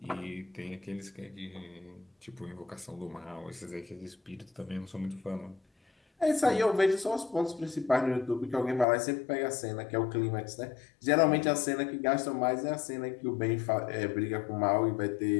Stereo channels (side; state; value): right; drops out; at 8.8 s